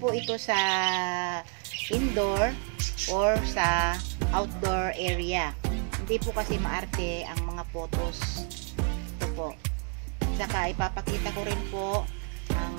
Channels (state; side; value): quieter; left; 37.0 dB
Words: po ito sa indoor or sa outdoor area. Hindi po kasi maarte ang mga pothos. Ito po. Saka ipapakita ko rin po